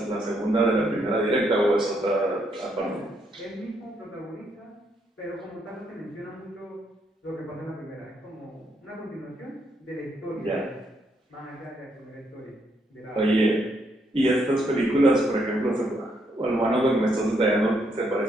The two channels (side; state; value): both; normal; correlation 0.75